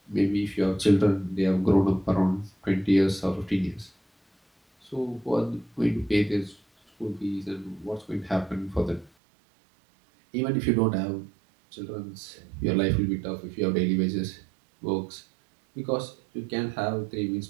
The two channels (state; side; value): drops out; left; at 9.1 s